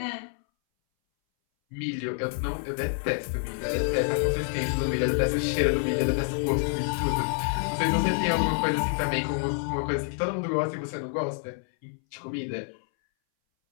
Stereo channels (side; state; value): right; silent; 60 dB below the other